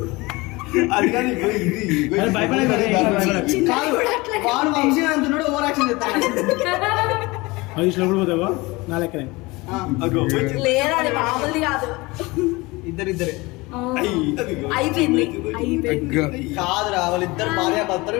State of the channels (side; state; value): right; quieter; 23.1 dB